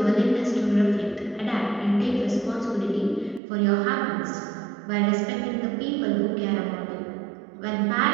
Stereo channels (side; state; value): left; drops out; at 3.4 s